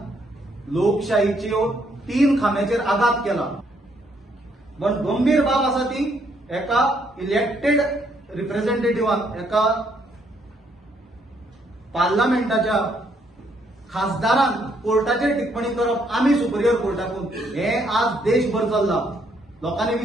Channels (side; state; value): both; normal; correlation 0.71